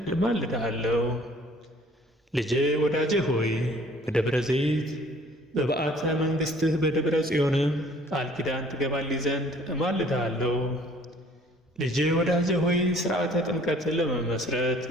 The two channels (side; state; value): both; normal; correlation 0.55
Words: እማልድሃለሁ። ልጄ ወዳጄ ሆይ በደብረ ዘይት በበዓተ መንግሥትህ በደብረ ጽዮንም ቃል ኪዳን ትገባልኝ ዘንድ እማልድሃለሁ። ልጄ ወዳጄ ሆይ ሥርዓተ ጥምቀትን ለመመስረት